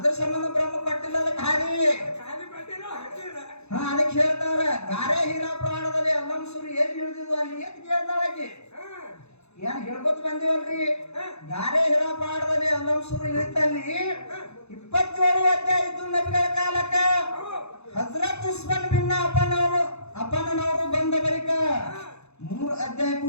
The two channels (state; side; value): late; right; 0.81 ms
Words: ಸಂಬಂಧ ಬ್ರಹ್ಮ ಪಟ್ಟಿಲ್ಲ ಅದಕ್ಕೆ ಹಾರಿ ಹಾ ಅದಕ್ಕೆ ಹೇಳ್ತಾವ್ರ ಗಾರೆ ಹೀರಾ ಪ್ರಾಣದಲ್ಲಿ ಅಲ್ಲಂಸುರು ಎಲ್ಲಿ ಹಿಡಿದಿದ್ವು ಅಲ್ಲಿ ಎತ್ ಕೇಳ್ತಾಳಕಿ ಏನ್ ಹೇಳ್ಕೊತ ಬಂದಿವಲ್ರಿ ಗಾರೆ ಹೀರಾ ಪ್ರಾಣದಲ್ಲಿ ಅಲ್ಲಂಸುರು ಇಳಿತಲ್ಲಿ 27 ಅಧ್ಯಾಯ ಇದ್ದು ನಬಿಗಳ ಕಾಲಕ್ಕ ಹಜರತ್ ಉಸ್ಮಾನ್ ಬಿನ್ ಅಪ್ಪನವರು ಬಂದ ಬಳಿಕ 3 ಅಧ್ಯಾಯ